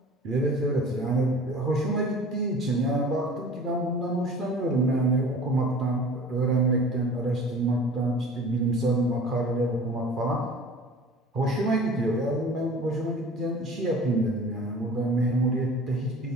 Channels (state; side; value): normal; both; correlation 0.43